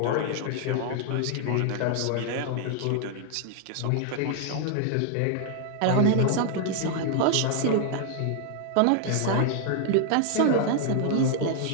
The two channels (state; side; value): different; both; correlation 0.00